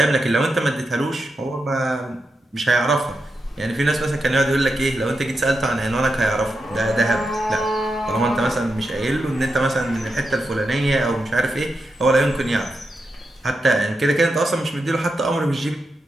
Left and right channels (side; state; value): both; normal; correlation 0.87